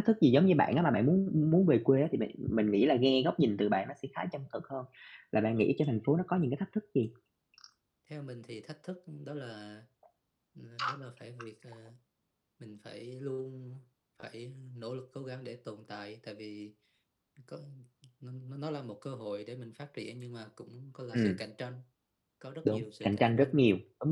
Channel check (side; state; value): both; identical; correlation 1.00